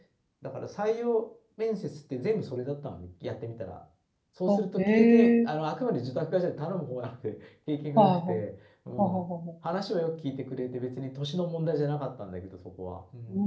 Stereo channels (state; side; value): identical; both; correlation 1.00